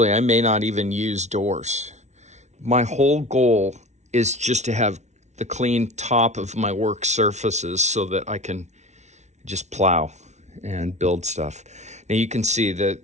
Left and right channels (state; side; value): late; left; 0.33 ms